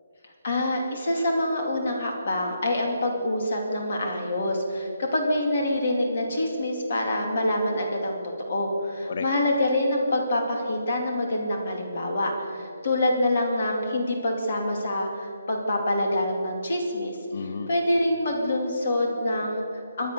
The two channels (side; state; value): both; inverted; correlation -0.78